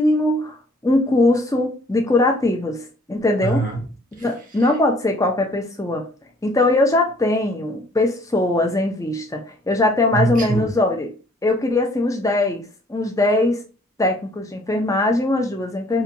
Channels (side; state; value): both; normal; correlation 0.58